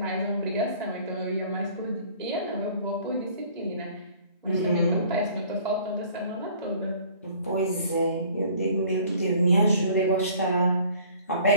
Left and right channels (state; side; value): inverted; both; correlation -0.53